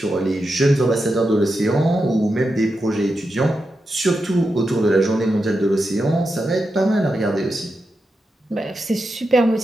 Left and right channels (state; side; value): normal; both; correlation 0.88